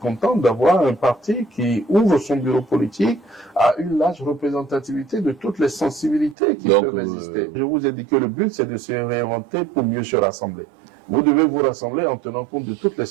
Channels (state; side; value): drops out; left; at 6.4 s